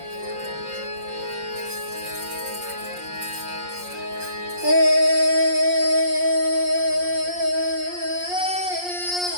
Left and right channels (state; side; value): late; left; 5.6 ms